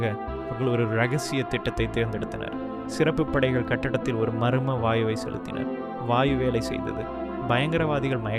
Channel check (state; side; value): identical; both; correlation 1.00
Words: அவர்கள் ஒரு இரகசிய திட்டத்தை தேர்ந்தெடுத்தனர். சிறப்பு படைகள் கட்டடத்தில் ஒரு மர்ம வாயுவை செலுத்தினர். வாயு வேலை செய்தது. பயங்கரவாதிகள்